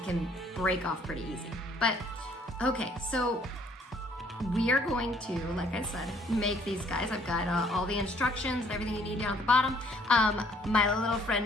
break off pretty easy. But okay, so we are going to, like I said, make these guys. I've got all the instructions and everything you need down at the bottom. My little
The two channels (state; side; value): normal; both; correlation 0.62